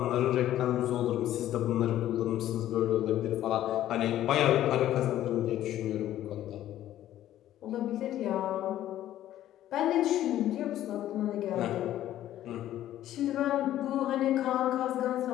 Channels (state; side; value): quieter; right; 12.8 dB